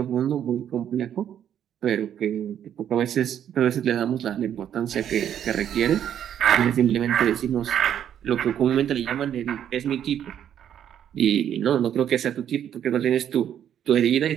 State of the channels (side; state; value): left; quieter; 9.8 dB